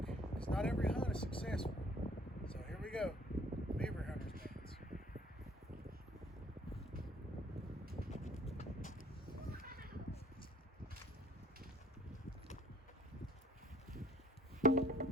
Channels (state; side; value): normal; both; correlation 0.56